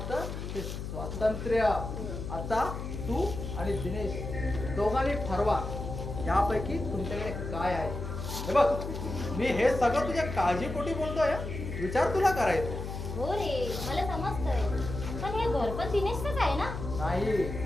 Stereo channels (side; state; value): left; noise; hum, 6 dB below the sound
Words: ते स्वातंत्र्य. आता तू आणि दिनेश दोघांनी ठरवा यापैकी तुमच्याकडे काय आहे. हे बघ मी हे सगळं तुझ्या काळजीपोटी बोलतोय. विचार तुला करायचा. हो रे मला समजतंय. पण हे घर पण दिनेशच आहे ना? नाही